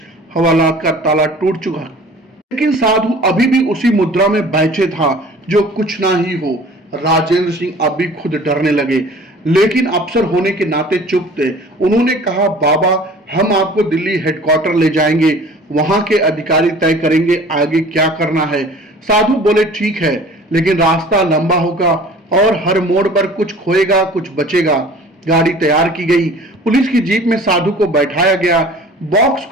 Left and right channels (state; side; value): normal; both; correlation 0.46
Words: हवालात का ताला टूट चुका, लेकिन साधु अभी भी उसी मुद्रा में बैठे था जो कुछ ना ही हो। राजेंद्र सिंह अभी खुद डरने लगे, लेकिन अफसर होने के नाते चुप थे। उन्होंने कहा, बाबा, हम आपको दिल्ली हेडक्वार्टर ले जाएंगे, वहां के अधिकारी तय करेंगे आगे क्या करना है। साधु बोले, ठीक है, लेकिन रास्ता लंबा होगा और हर मोड़ पर कुछ खोएगा कुछ बचेगा। गाड़ी तैयार की गई। पुलिस की जीप में साधु को बैठाया गया। बॉक्स